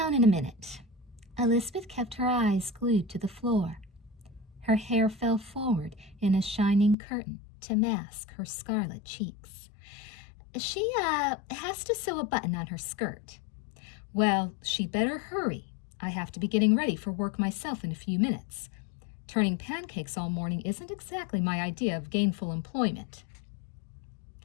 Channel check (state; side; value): drops out; right; at 7.0 s